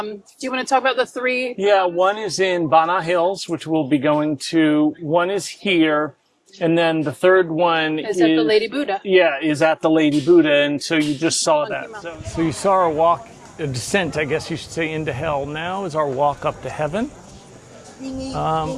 you want to talk about the 3? Yeah, one is in Bana Hills, which we'll be going to. One is here, and then the third one Is at the Lady Buddha. Yeah, is at the Lady Buddha, and so you just saw Monkey that. Mountain. So you saw our walk, a descent, I guess you should say, into hell. Now is our walk up to heaven.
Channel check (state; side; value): identical; both; correlation 1.00